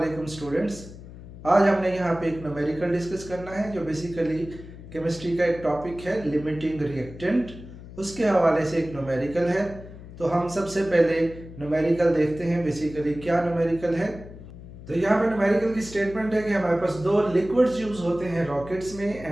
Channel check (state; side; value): noise; left; hum, 15 dB below the sound